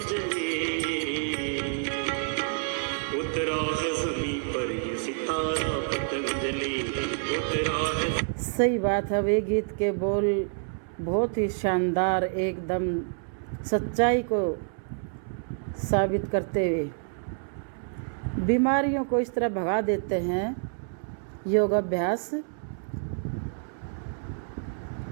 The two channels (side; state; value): left; silent; 59 dB below the other